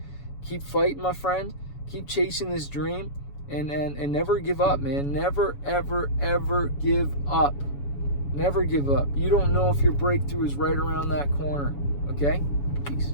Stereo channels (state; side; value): late; right; 7.1 ms